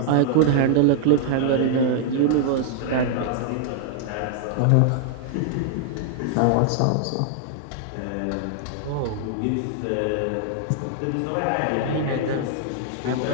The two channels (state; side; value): different; both; correlation -0.01